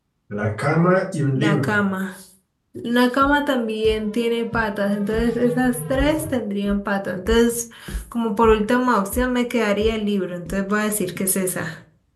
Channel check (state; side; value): identical; both; correlation 1.00